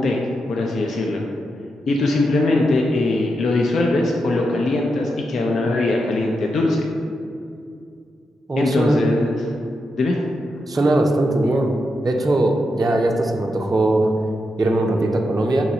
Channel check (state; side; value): normal; both; correlation 0.86